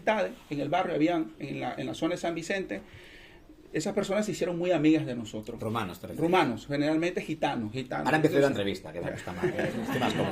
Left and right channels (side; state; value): both; identical; correlation 1.00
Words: en el barrio, habían en la zona de San Vicente. Esas personas se hicieron muy amigas de nosotros. Romanos, te refieres. Rumanos, generalmente gitanos. Ahora empiezo la entrevista, que está más, estoy más